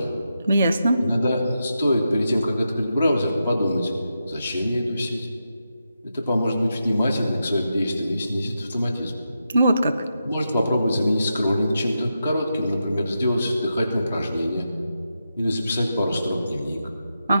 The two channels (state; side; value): inverted; both; correlation -0.87